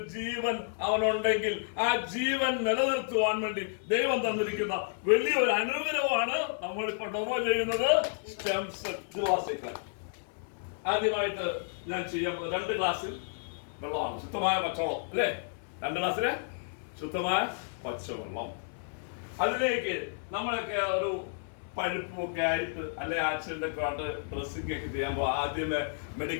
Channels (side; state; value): right; silent; 57 dB below the other